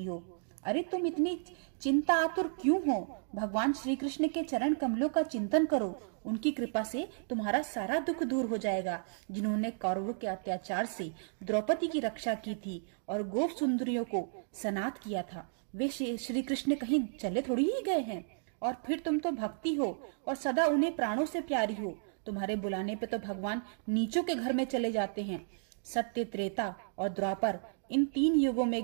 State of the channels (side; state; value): left; silent; digital silence